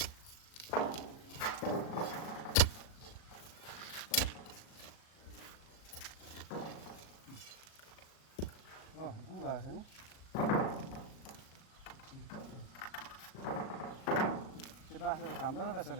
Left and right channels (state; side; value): late; right; 37 ms